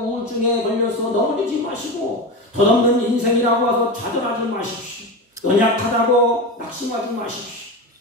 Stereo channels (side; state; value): both; normal; correlation 0.21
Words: 우울증에 걸려서 넘어지지 마시고, 덧없는 인생이라고 해서 좌절하지 마십시오. 연약하다고 낙심하지 마십시오.